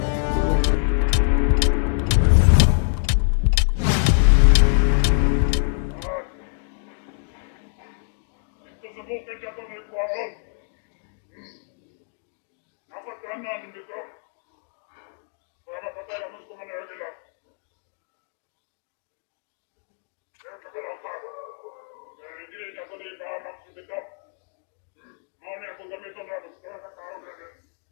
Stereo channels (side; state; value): right; silent; 62 dB below the other